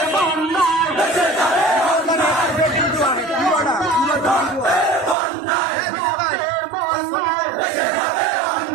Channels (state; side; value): drops out; left; at 5.2 s